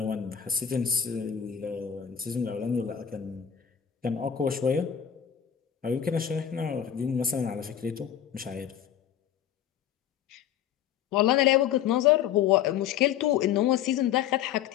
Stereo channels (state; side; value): quieter; right; 9.4 dB